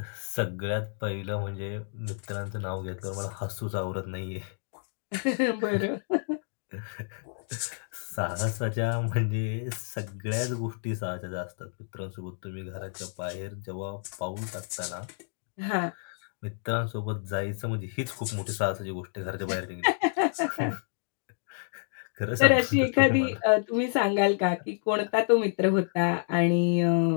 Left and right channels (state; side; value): silent; right; digital silence